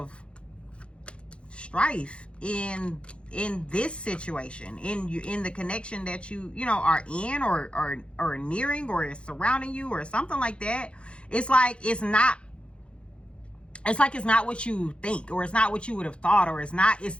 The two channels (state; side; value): late; right; 0.058 ms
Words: strife in this situation, in the connection that you are in, or nearing, or is surrounding you, or something like that. It's like it's not what you think, or it's not what you would have thought, or it's